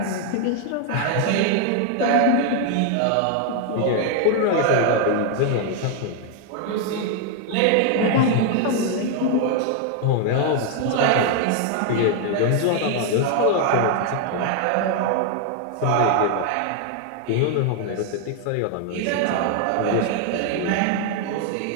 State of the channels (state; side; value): different; both; correlation 0.00